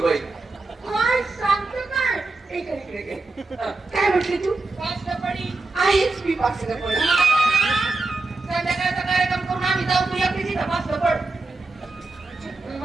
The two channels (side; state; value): left; quieter; 3.4 dB